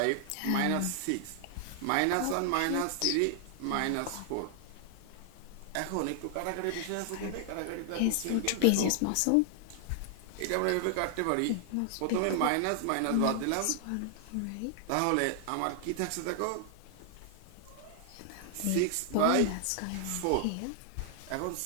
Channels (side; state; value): both; different; correlation 0.00